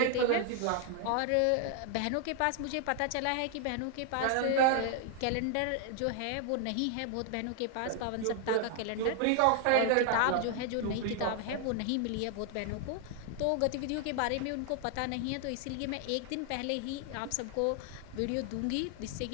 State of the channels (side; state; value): both; different; correlation 0.00